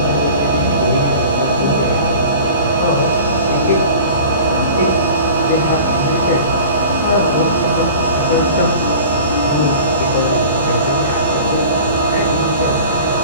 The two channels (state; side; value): inverted; both; correlation -0.41